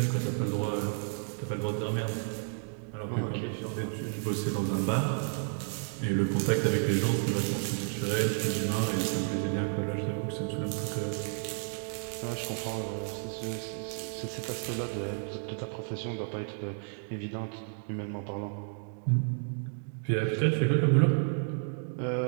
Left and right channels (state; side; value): silent; left; 57 dB below the other